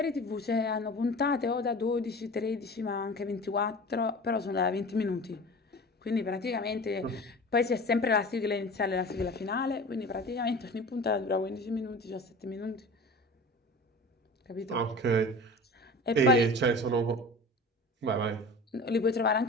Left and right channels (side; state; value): both; normal; correlation 0.37